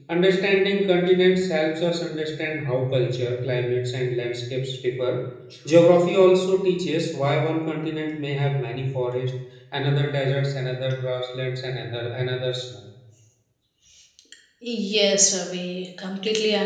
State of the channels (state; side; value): identical; both; correlation 1.00